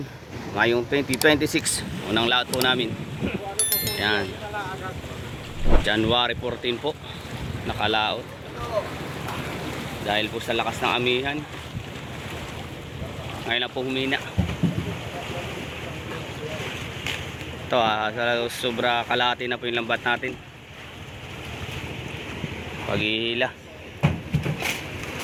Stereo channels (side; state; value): both; identical; correlation 1.00